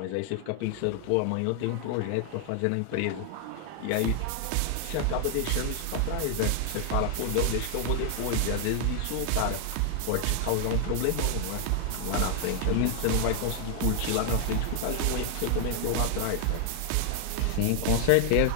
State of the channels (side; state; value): both; different; correlation 0.00